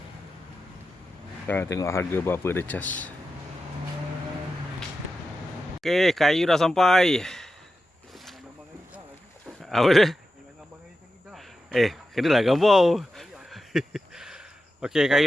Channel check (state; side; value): normal; both; correlation 0.91